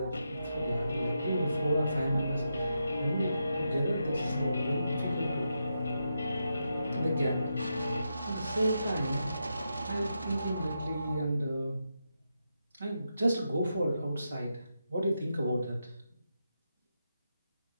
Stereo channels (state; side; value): inverted; both; correlation -0.85